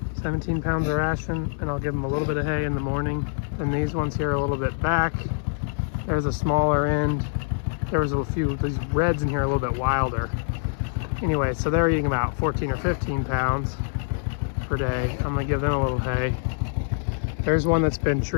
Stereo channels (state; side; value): silent; right; 62 dB below the other